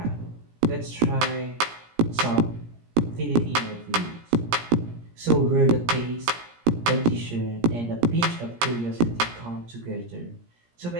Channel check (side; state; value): left; late; 17 ms